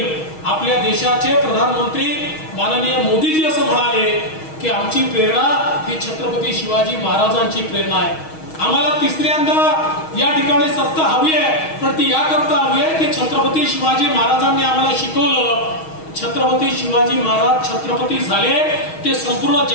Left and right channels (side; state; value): right; late; 6.3 ms